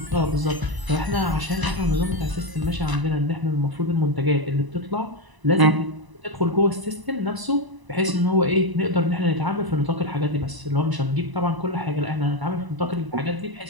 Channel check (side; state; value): left; late; 1.0 ms